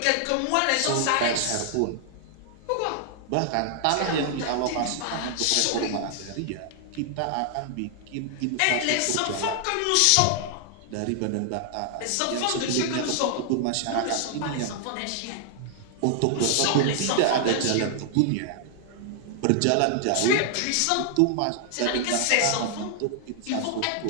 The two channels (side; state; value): both; different; correlation 0.00